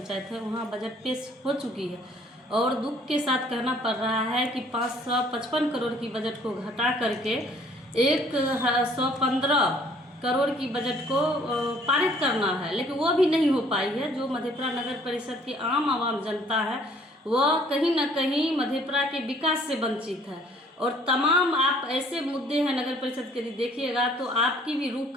है वहाँ बजट पेश हो चुकी है। और दुख के साथ कहना पड़ रहा है कि 555 करोड़ की बजट को घटा करके 115 करोड़ की बजट को पारित करना है, लेकिन वो भी नहीं हो पाई है। जो मधेपुरा नगर परिषद की आम जनता है वह कहीं ना कहीं मधेपुरा के विकास से वंचित है। और तमाम आप ऐसे मुद्दे हैं नगर परिषद के, यदि देखिएगा तो आपकी भी रूह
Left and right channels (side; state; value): both; normal; correlation 0.58